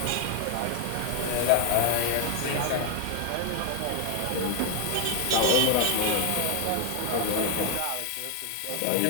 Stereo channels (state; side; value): different; both; correlation 0.00